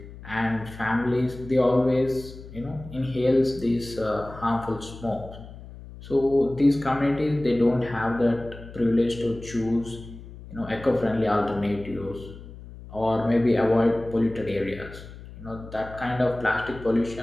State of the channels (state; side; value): noise; left; hum, 15 dB below the sound